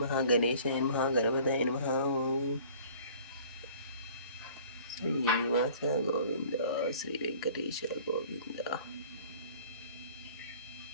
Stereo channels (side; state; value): both; inverted; correlation -0.50